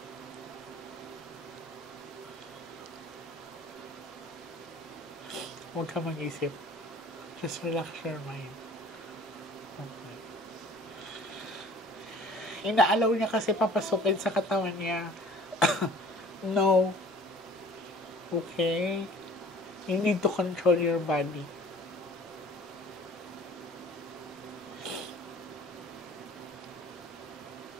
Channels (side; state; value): both; normal; correlation 0.49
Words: Huwag ka mag-isip. Just relax your mind. Okay. Inaalaw niya kasi papasukin sa katawan niya. No. Okay? You need to control your body.